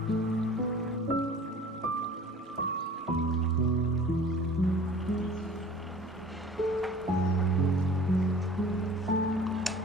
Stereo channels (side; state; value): both; normal; correlation 0.46